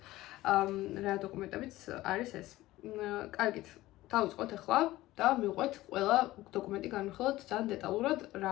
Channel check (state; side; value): quieter; right; 17.0 dB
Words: რა დოკუმენტებიც არის ეს. კარგით, დავიწყოთ ახლა და მივყვეთ ყველა დოკუმენტი განვიხილოთ ძალიან დეტალურად რა